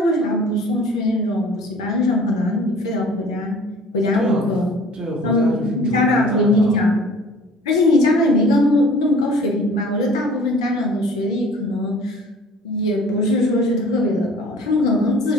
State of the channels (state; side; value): normal; both; correlation 0.48